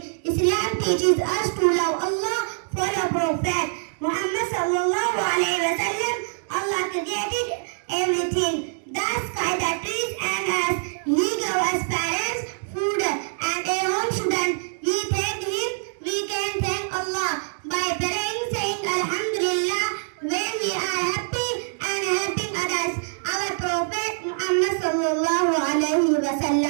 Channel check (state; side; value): silent; left; digital silence